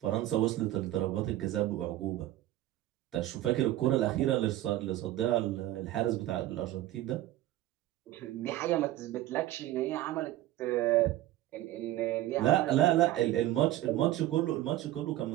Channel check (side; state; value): left; quieter; 14.8 dB